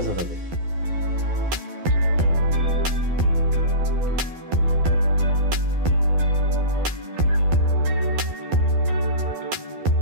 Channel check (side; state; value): left; late; 12 ms